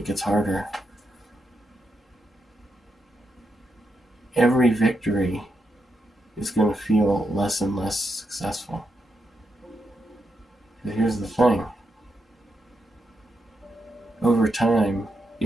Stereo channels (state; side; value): normal; both; correlation 0.84